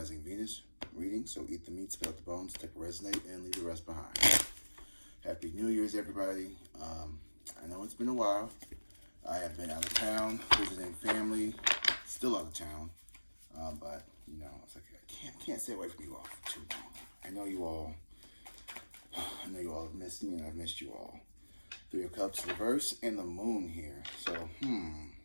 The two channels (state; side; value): inverted; both; correlation -1.00